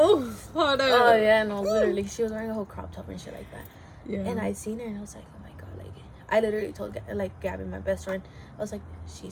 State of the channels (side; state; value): both; identical; correlation 1.00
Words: hold on. Oh yeah, no, literally, she was wearing a whole crop top and shit like that. Yeah. And I seen her and I was like, oh my god, like, I literally told like Gabby, my best friend, I was like,